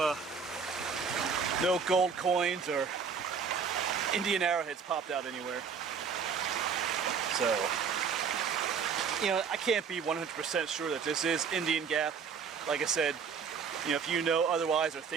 gold coins or Indian arrowheads popped out anywhere. So, you know, I can't be 100% sure that this is Indian Gap. Like I said, you know, if you know otherwise or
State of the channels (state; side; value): quieter; left; 6.2 dB